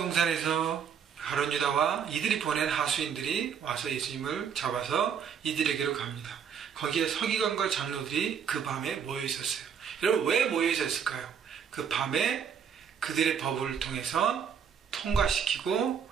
가룟 유다와 이들이 보낸 하수인들이 와서 예수님을 잡아서 이들에게로 갑니다. 거기에 서기관과 장로들이 그 밤에 모여있었어요. 여러분, 왜 모여있었을까요? 그 밤에 그들의 법을 통해서 통과시키고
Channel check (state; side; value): quieter; left; 7.5 dB